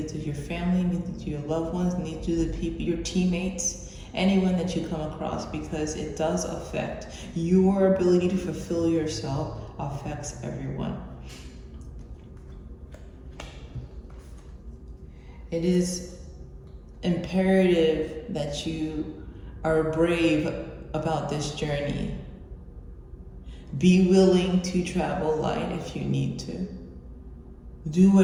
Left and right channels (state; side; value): identical; both; correlation 1.00